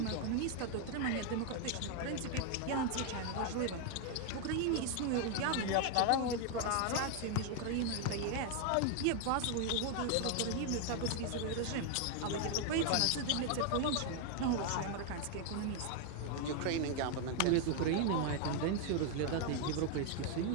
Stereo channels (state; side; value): different; both; correlation 0.00